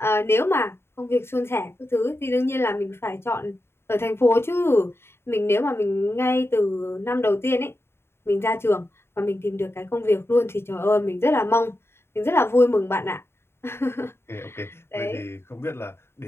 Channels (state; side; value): late; right; 0.12 ms